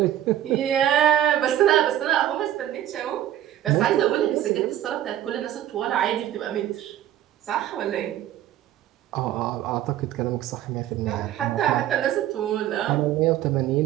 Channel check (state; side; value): quieter; left; 12.3 dB